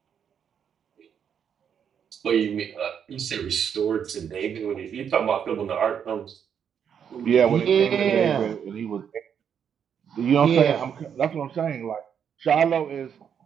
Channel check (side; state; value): left; quieter; 8.0 dB